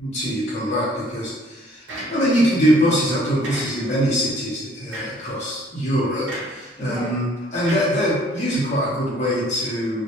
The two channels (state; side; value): normal; both; correlation 0.58